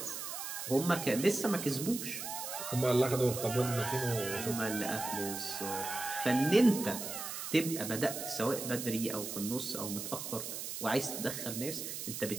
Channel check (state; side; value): noise; right; hiss, 6 dB below the sound